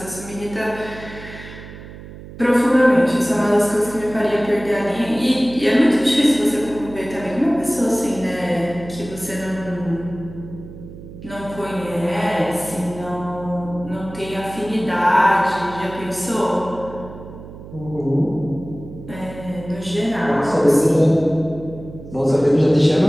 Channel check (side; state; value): right; noise; hum, 15 dB below the sound